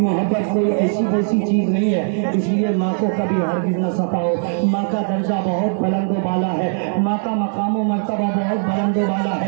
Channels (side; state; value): left; silent; 66 dB below the other